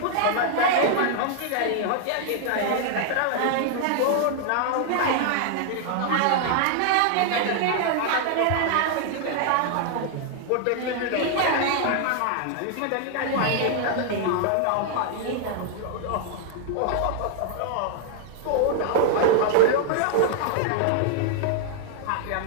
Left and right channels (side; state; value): both; different; correlation 0.00